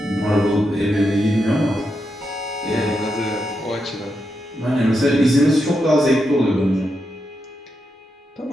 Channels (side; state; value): both; normal; correlation 0.85